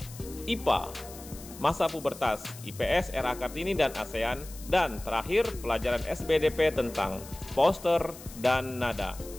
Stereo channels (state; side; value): noise; left; hiss, 17 dB below the sound